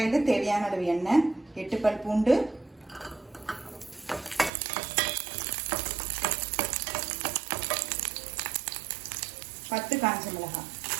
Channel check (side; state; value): left; drops out; at 4.5 s